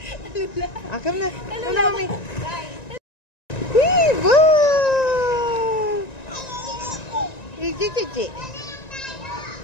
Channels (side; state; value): right; late; 1.9 ms